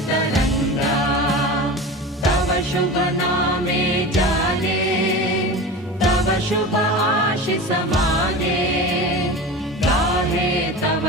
तव शुभ नामे जाने तव शुभ आशिष माने गाहे तव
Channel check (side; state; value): both; normal; correlation 0.31